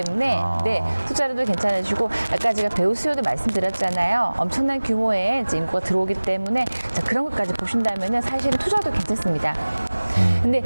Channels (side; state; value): both; inverted; correlation -1.00